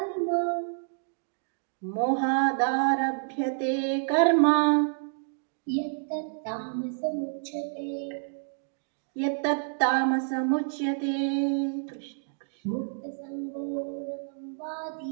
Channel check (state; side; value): silent; left; digital silence